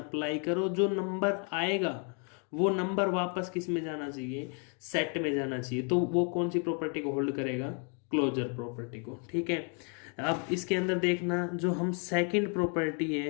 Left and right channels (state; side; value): quieter; right; 39.7 dB